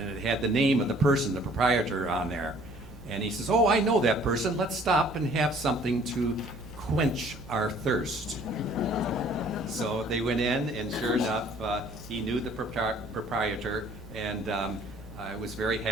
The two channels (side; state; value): left; noise; hum, 21 dB below the sound